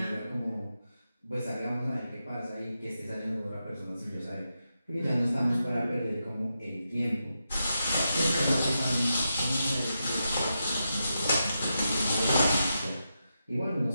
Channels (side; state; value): both; inverted; correlation -0.87